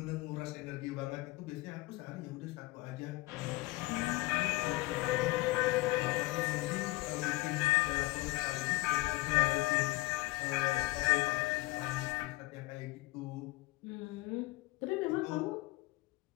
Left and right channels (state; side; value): quieter; right; 20.7 dB